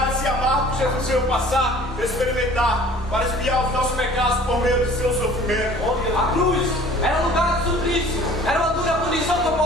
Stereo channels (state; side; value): normal; both; correlation 0.49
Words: amargo que Jesus veio passar, experimentar, para expiar os nossos pecados por meio de seu sofrimento. A cruz era lugar de suplício, era uma dura punição